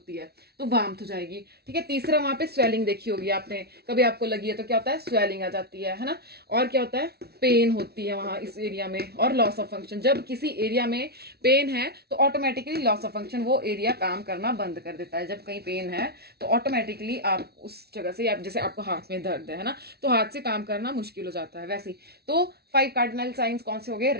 है, तो वार्मथ हो जाएगी। ठीक है, तीसरा वहां पे स्वेलिंग देखी होगी आपने, कभी आपको लगी है तो क्या होता है, स्वेलिंग आ जाती है ना। और क्या होता है, पेन होती है वहां इस एरिया में, और लॉस ऑफ फंक्शन। जब किसी एरिया में पेन है तो ऑटोमेटिकली लॉस ऑफ फंक्शन, वो एरिया काम करना बंद कर देता है। जब कहीं पेन है तो ऑटोमेटिकली आप उस जगह से, आप जैसे आपको हाथ में दर्द है ना, तो हाथ से काम करना मुश्किल हो जाता है वैसे ही। तो 5 कार्डिनल साइंस कौन से हो गए?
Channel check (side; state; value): left; late; 0.46 ms